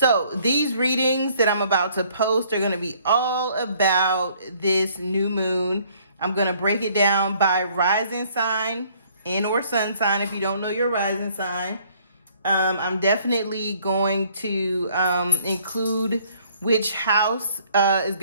these readings that I'm about to post are going to be all about this new moon. I'm going to break it down by rising sign and or sun sign if you don't know your rising sign. I'm definitely going to include which house is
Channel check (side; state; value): both; inverted; correlation -0.62